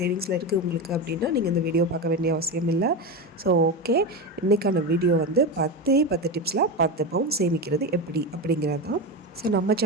இருக்குது உங்களுக்கு அப்படின்னா நீங்கள் இந்த வீடியோ பார்க்க வேண்டிய அவசியம் இல்லை. ஸோ ஓகே, இன்றைக்கான வீடியோ வந்து 10 டிப்ஸில் 10 பவுண்ட் சேமிக்கிறது எப்படி அப்படிங்கிறது தான். ஸோ நம்ம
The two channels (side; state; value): both; normal; correlation 0.18